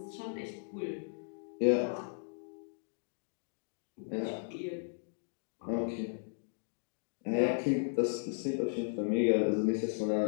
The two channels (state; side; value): silent; right; digital silence